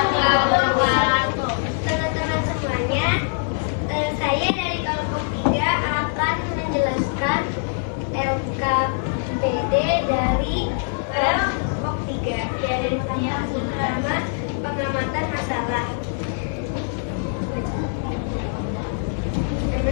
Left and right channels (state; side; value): silent; right; digital silence